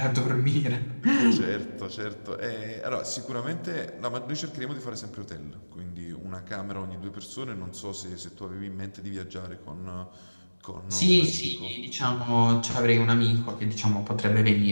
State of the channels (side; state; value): both; inverted; correlation -1.00